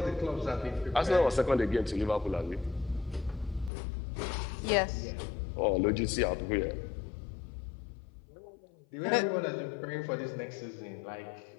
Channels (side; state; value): right; drops out; at 3.7 s